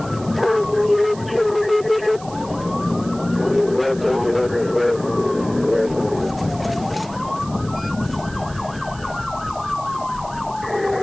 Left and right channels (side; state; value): right; noise; hiss, 19 dB below the sound